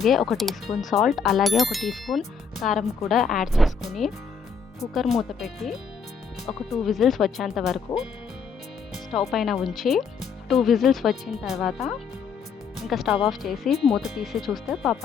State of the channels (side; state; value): right; quieter; 5.8 dB